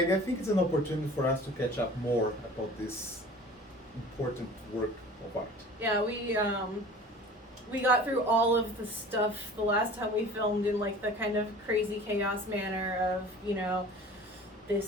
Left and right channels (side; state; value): both; normal; correlation 0.43